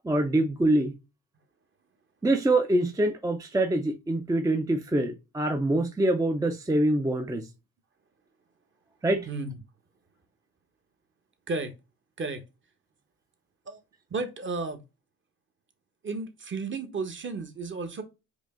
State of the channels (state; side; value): normal; both; correlation 0.76